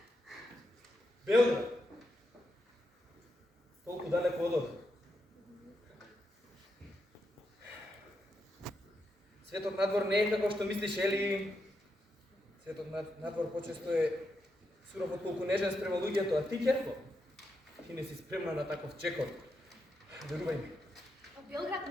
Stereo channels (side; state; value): both; normal; correlation 0.84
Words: Белград. Толку далеко од овде. Светот надвор не е како што мислиш, Ели. Светот надвор почесто е суров отколку нежен спрема луѓето, а ти, Керко, ти не си спремна на таков чекор. Верувај ми. А Белград